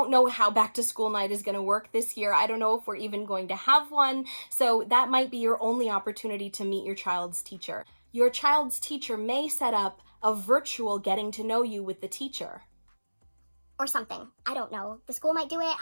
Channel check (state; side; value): inverted; both; correlation -1.00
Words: know how back to school night is going to work this year. I don't know if we're even going to have one. So that might be your only opportunity to meet your child's teacher. Your child's teacher may set up a virtual getting to know you with the teacher. Or something. I don't know. The school might do it.